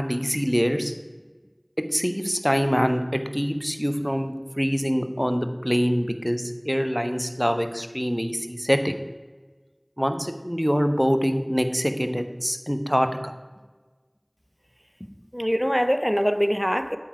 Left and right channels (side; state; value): both; identical; correlation 1.00